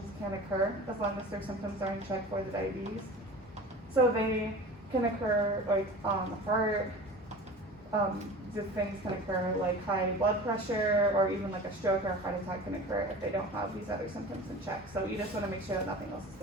can occur, as long as their symptoms are in check for the diabetes. So they can occur like heart, things can occur like high blood pressure, or even like a stroke or a heart attack can occur if they don't have these other symptoms in check. So you just want to make sure that nothing else is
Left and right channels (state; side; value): normal; both; correlation 0.37